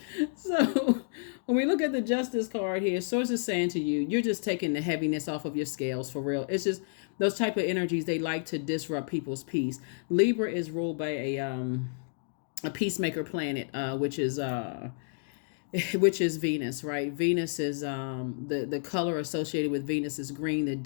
So when we look at the Justice card here, Source is saying to you, you're just taking the heaviness off of your scales for real. It's just those type of energies, they like to disrupt people's peace. Libra is ruled by a peacemaker planet, which is Venus, right? Venus is the color associated with Venus is green. The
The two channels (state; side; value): silent; right; digital silence